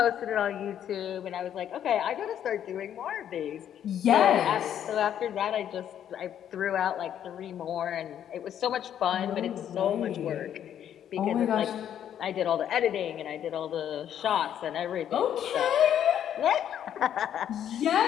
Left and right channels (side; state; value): right; quieter; 9.9 dB